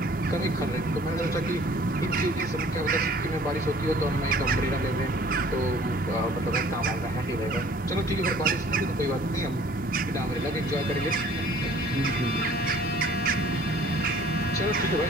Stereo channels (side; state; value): both; normal; correlation 0.53